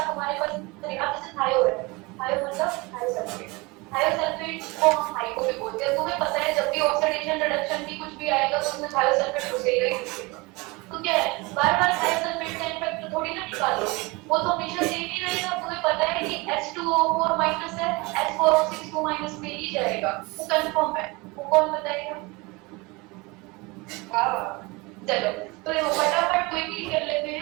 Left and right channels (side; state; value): left; quieter; 25.1 dB